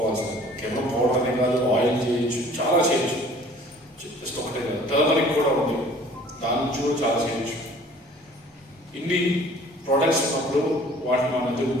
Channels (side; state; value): both; normal; correlation 0.51